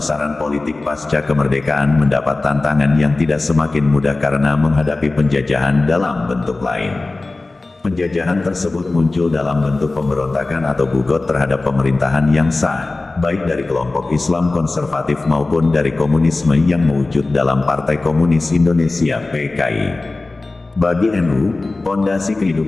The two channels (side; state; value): right; quieter; 3.2 dB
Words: politik pasca kemerdekaan mendapat tantangan yang tidak semakin mudah karena menghadapi penjajahan dalam bentuk lain. Penjajahan tersebut muncul dalam bentuk pemberontakan atau bugot terhadap pemerintahan yang sah, baik dari kelompok Islam konservatif maupun dari komunisme yang mewujud dalam Partai Komunis Indonesia (PKI). Bagi NU, pondasi